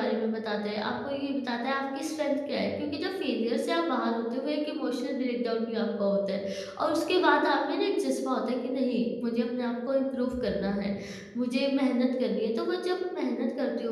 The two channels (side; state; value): both; identical; correlation 1.00